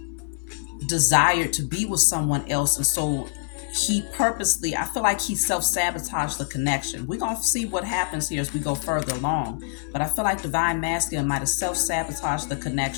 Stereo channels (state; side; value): silent; right; digital silence